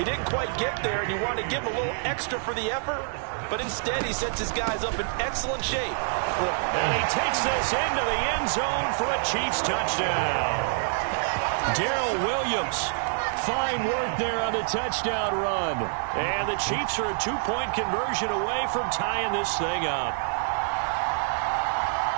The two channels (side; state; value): left; silent; digital silence